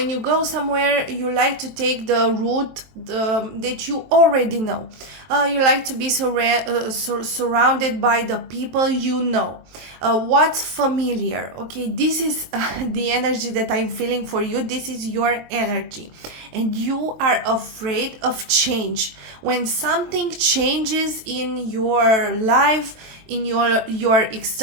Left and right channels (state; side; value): late; left; 23 ms